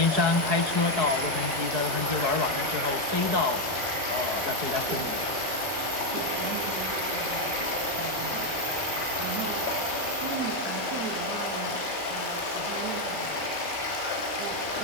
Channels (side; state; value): left; late; 4.7 ms